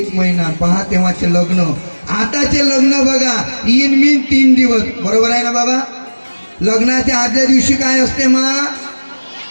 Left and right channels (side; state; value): both; inverted; correlation -1.00